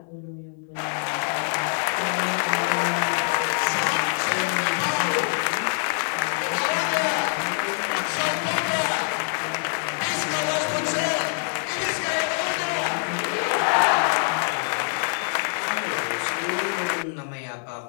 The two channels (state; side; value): silent; right; 61 dB below the other